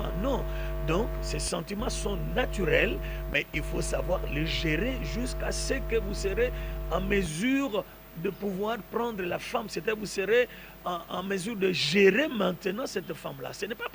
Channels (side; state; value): both; identical; correlation 1.00